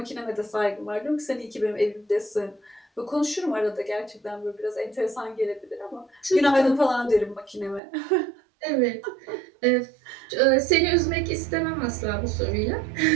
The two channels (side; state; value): left; drops out; at 7.8 s